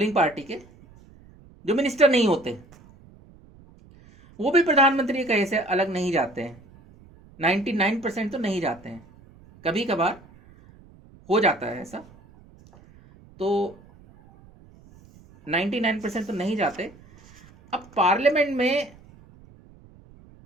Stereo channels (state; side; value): noise; right; rumble, 25 dB below the sound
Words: पार्टी के, जो मिनिस्टर नहीं होते, वो भी प्रधानमंत्री के कहे से अलग नहीं जाते हैं। 99% तो नहीं जाते हैं, कभी कभार हो जाता है ऐसा, तो 99% तो नहीं जाते। अब पार्लियामेंट में